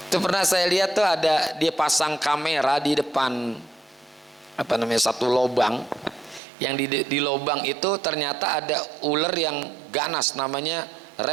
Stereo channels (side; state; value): left; drops out; at 6.4 s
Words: Itu pernah saya lihat tuh ada dia pasang kamera di depan satu lobang, yang di lobang itu ternyata ada ular yang ganas, namanya